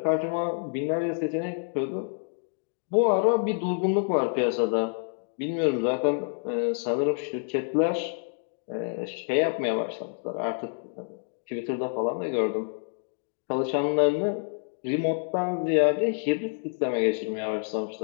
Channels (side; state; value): right; silent; digital silence